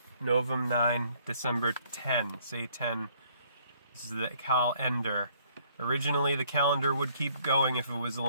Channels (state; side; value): inverted; both; correlation -0.63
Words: Novem 9, December 10. Say 10. This is the calendar Originally, the calendar would keep going if it was